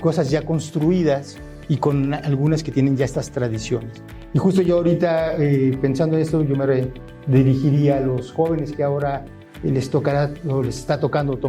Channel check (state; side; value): identical; both; correlation 1.00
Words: ya construidas y con algunas que tienen ya estas tradiciones. Y justo yo ahorita, pensando en esto, yo me dirigiría a los jóvenes que ahora les tocará o les está tocando